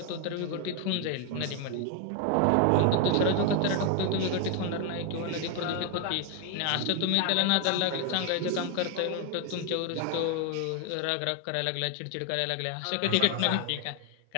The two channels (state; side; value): different; both; correlation 0.01